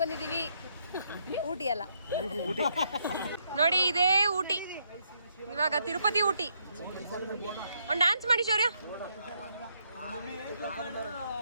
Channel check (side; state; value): both; inverted; correlation -0.75